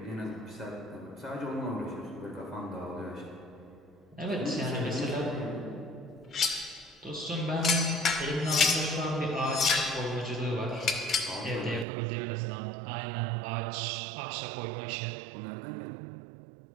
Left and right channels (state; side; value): drops out; left; at 11.9 s